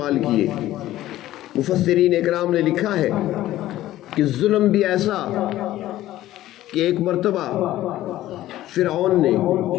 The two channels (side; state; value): right; quieter; 14.6 dB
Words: کیے۔ مفسرین اکرام نے لکھا ہے کہ ظلم بھی ایسا کہ ایک مرتبہ فرعون نے